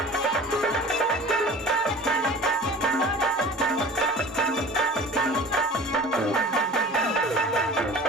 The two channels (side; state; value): both; normal; correlation 0.41